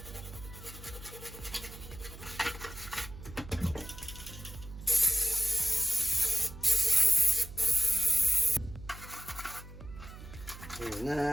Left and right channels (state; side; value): noise; right; hum, 14 dB below the sound